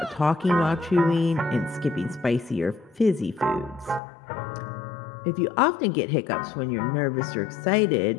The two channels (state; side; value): drops out; right; at 4.0 s